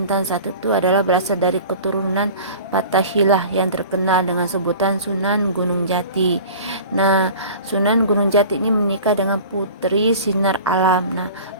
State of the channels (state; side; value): inverted; both; correlation -0.40